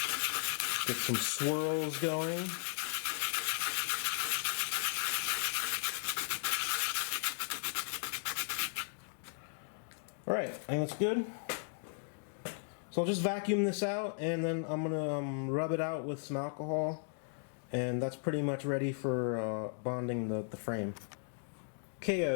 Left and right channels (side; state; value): right; silent; digital silence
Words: get some swirls going. Alright, I think that's good. So I'll just vacuum this out, and then I'm going to rub it out with some alcohol, and that's pretty much ready for bonding the frame. Okay,